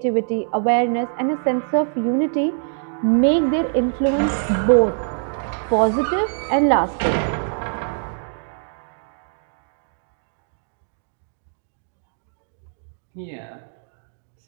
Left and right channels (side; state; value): left; silent; digital silence